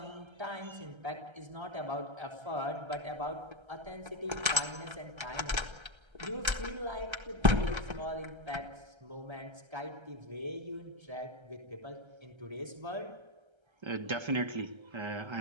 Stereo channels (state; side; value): late; left; 1.3 ms